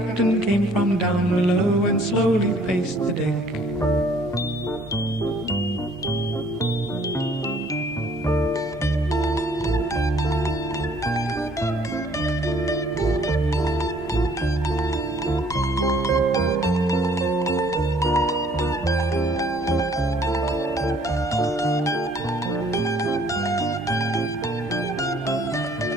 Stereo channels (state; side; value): normal; both; correlation 0.59